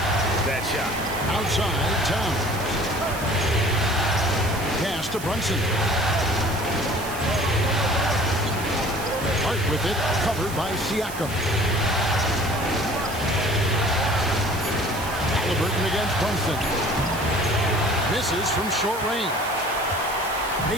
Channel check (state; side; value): noise; right; hiss, 13 dB below the sound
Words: that shot. Outside, Towns. Pass to Brunson. Hart with it, covered by Siakam. Halliburton against Brunson. Misses from short range.